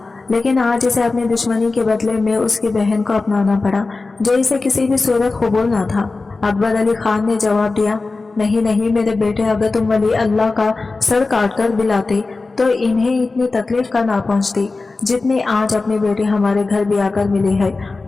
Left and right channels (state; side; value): quieter; right; 3.7 dB